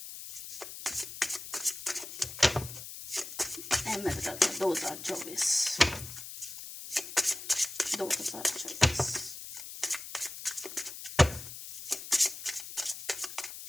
मैं बताता हूँ 2024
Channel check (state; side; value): noise; left; hiss, 10 dB below the sound